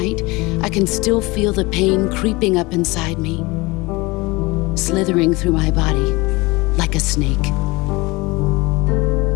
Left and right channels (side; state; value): right; quieter; 23.5 dB